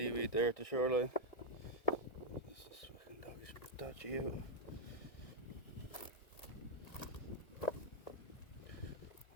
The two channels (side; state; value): right; late; 1.9 ms